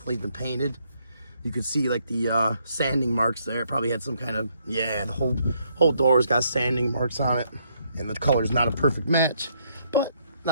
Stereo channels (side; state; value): both; inverted; correlation -0.72